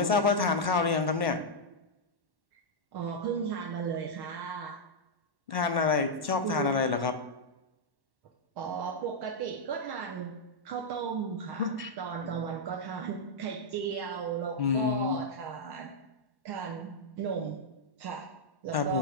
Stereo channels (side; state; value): left; late; 1.1 ms